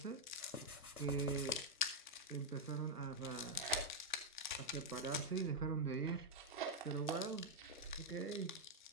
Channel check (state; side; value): normal; both; correlation -0.01